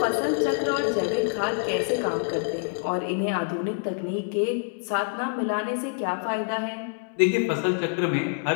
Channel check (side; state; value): right; silent; 61 dB below the other